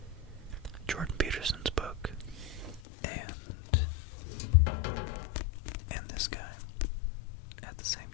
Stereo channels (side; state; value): right; drops out; at 2.8 s